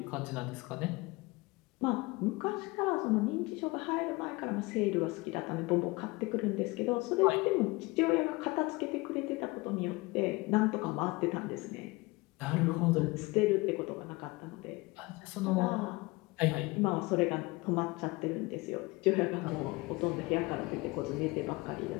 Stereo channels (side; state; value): right; quieter; 23.5 dB